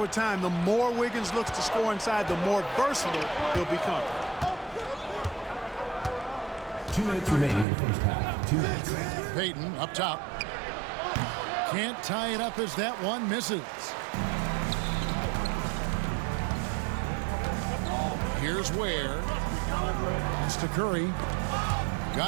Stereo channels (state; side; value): drops out; left; at 7.7 s